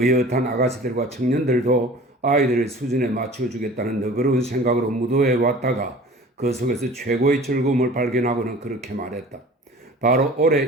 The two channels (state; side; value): normal; both; correlation 0.43